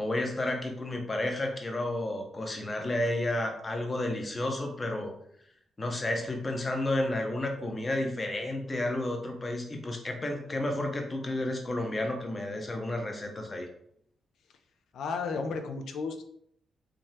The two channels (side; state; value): both; normal; correlation 0.87